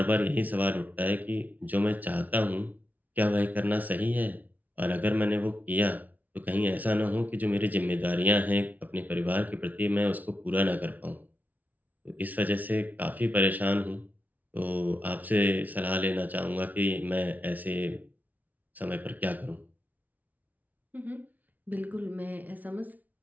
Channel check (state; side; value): late; left; 0.077 ms